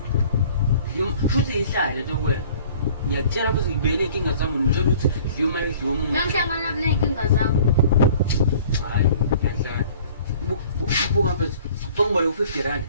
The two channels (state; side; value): inverted; both; correlation -0.51